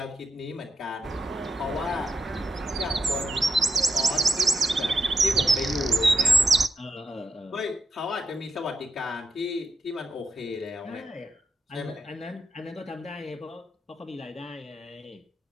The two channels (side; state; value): both; normal; correlation 0.85